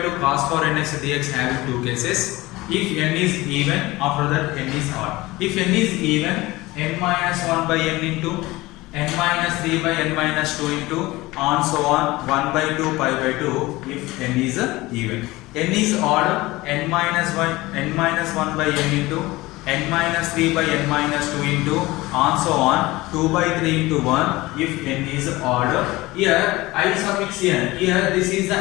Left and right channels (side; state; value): right; quieter; 20.0 dB